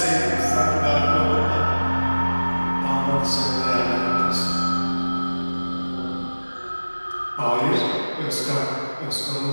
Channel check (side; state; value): both; inverted; correlation -1.00